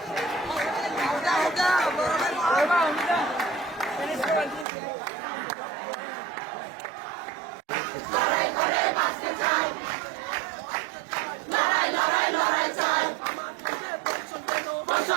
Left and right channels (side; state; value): left; drops out; at 4.7 s